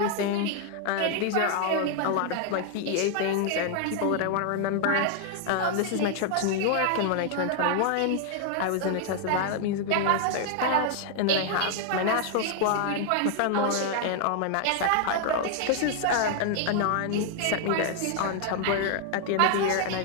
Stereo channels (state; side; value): different; both; correlation 0.00